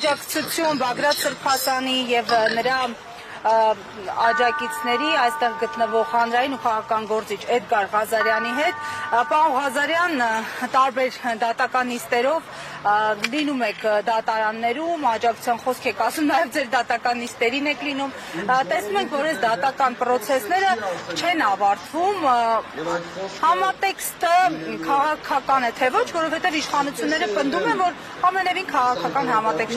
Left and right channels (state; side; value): identical; both; correlation 1.00